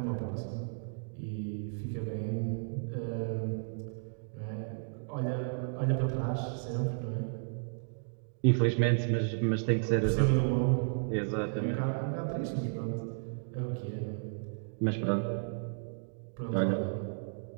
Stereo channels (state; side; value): silent; left; digital silence